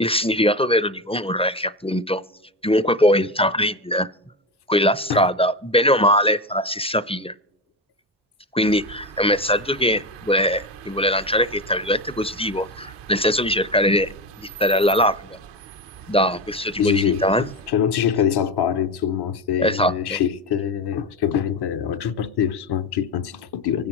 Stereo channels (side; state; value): both; normal; correlation 0.18